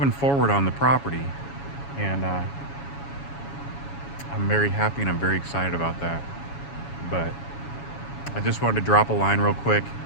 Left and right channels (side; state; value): right; late; 7.2 ms